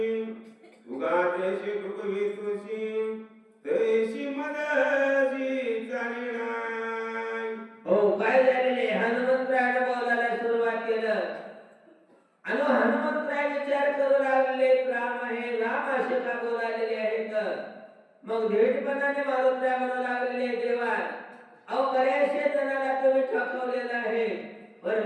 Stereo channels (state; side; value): identical; both; correlation 1.00